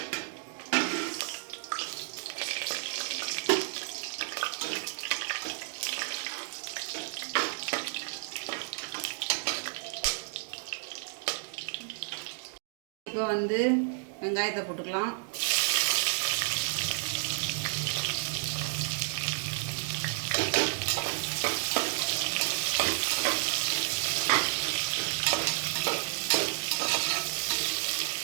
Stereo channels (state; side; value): silent; left; digital silence